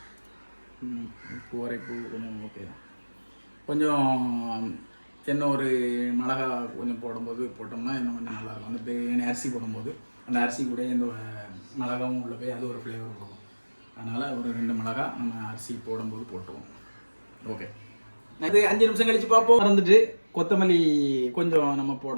உப்பு உரைப்பு கொஞ்சம் ஓகே. கொஞ்சம் இன்னும் ஒரு மிளகா கொஞ்சம் போடும்போது போட்டோம்னா இன்னும் கொஞ்சம் நல்லாயிருக்கும். அந்த பிரியாணி அரிசி போடும்போது அந்த அரிசி கூட இந்த மிளகாவும் உள்ளே போய் அது ஒரு ஃப்ளேவர் கொடுக்கும். அதனால் ஒரு 2 மிளகா நம்ம அரிசி போடும்போது போட்டுருவோம். ஓகே, இது 5 நிமிஷம் கழித்து பார்ப்போம். மறந்துட்டு கொத்தமல்லி கொஞ்சம் நம்ம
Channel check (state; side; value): inverted; both; correlation -1.00